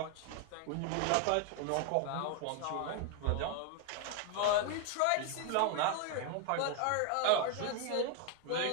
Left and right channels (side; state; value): both; different; correlation 0.00